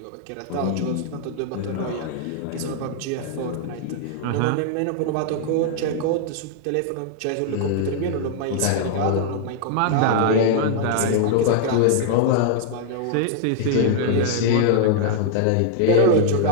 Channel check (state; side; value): different; both; correlation 0.00